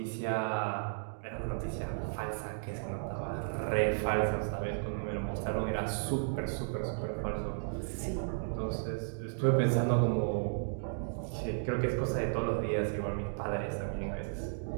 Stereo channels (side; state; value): left; silent; digital silence